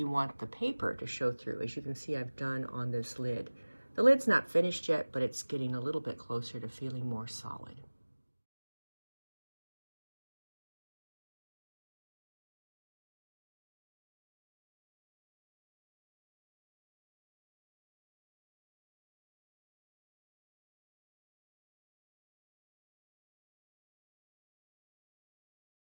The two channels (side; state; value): both; inverted; correlation -1.00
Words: want the paper to show through, as you can see I've done on this lid. The lid's not finished yet, but it's getting a little bit closer to feeling more solid.